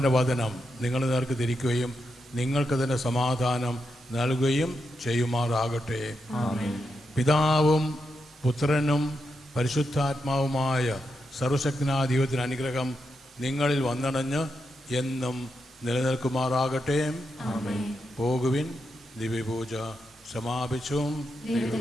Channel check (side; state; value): both; normal; correlation 0.85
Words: വചനം നിങ്ങളുടെ നേർക്ക് തിരിക്കുകയും നിങ്ങൾക്ക് തന്നെ സമാധാനം നൽകുകയും ചെയ്യുമാറാകട്ടെ. പിതാവും പുത്രനും പരിശുദ്ധാത്മാവുമായ സർവശക്തനായ ദൈവത്തിന് അനുഗ്രഹം നിങ്ങളിൽ വന്നണഞ്ഞ് എന്നും നിലനിൽക്കുമാറാകട്ടെ. പോകുവിൻ. ദിവ്യപൂജ സമാപിച്ചു.